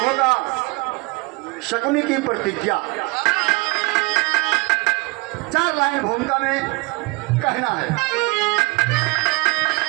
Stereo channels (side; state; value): left; quieter; 26.1 dB